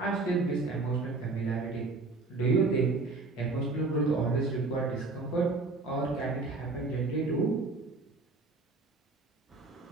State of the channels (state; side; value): quieter; left; 3.6 dB